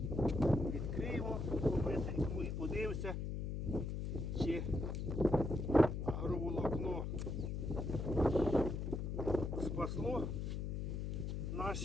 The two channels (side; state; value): left; noise; hum, 2 dB below the sound